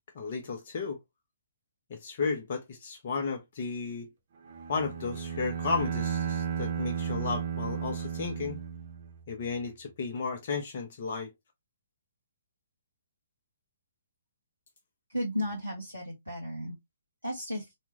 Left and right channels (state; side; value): inverted; both; correlation -0.62